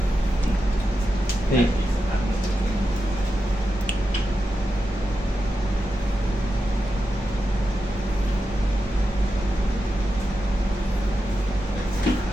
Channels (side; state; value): both; normal; correlation 0.89